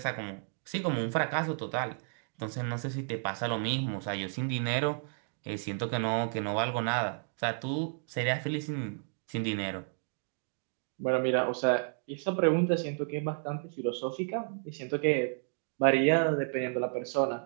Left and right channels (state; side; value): silent; left; 56 dB below the other